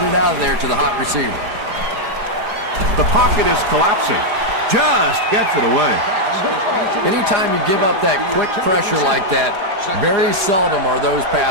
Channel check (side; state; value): left; late; 5.0 ms